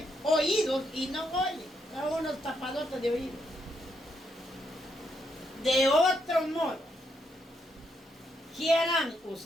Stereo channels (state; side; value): normal; both; correlation 0.78